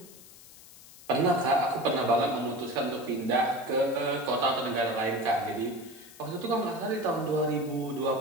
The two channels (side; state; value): left; noise; hiss, 20 dB below the sound